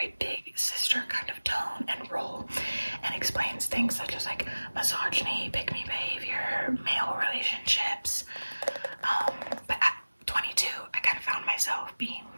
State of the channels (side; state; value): both; inverted; correlation -1.00